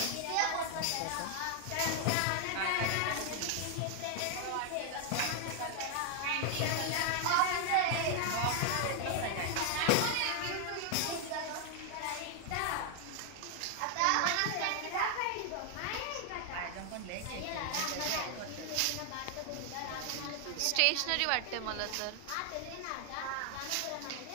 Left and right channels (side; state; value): both; different; correlation 0.00